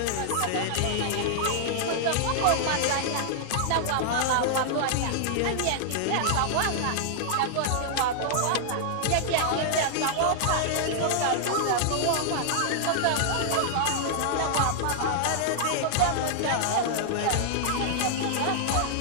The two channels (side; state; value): both; different; correlation -0.01